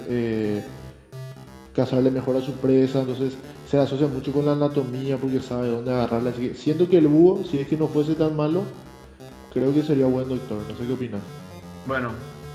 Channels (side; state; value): both; identical; correlation 1.00